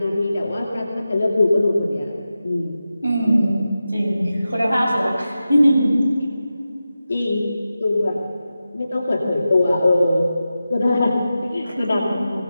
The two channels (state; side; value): inverted; both; correlation -0.93